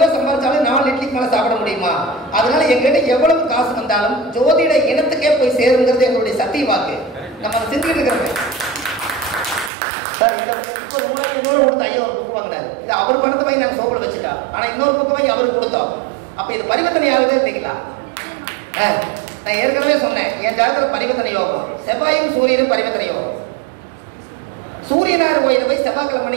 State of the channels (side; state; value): left; drops out; at 9.7 s